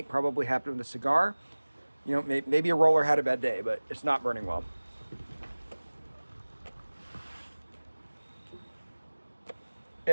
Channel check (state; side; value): inverted; both; correlation -1.00